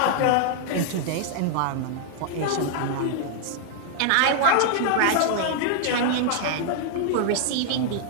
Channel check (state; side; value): different; both; correlation 0.00